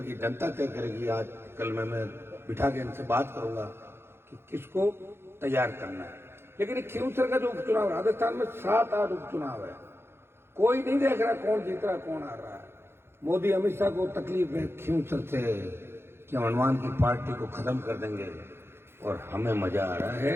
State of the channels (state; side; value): late; left; 0.12 ms